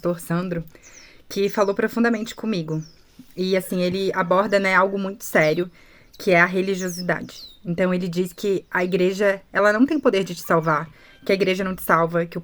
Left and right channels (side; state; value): both; identical; correlation 1.00